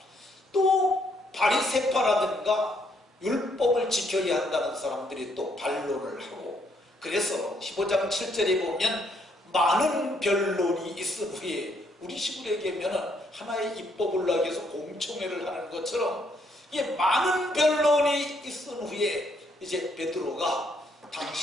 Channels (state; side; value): normal; both; correlation 0.71